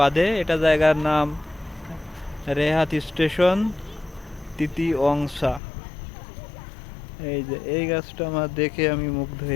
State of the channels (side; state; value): right; drops out; at 5.6 s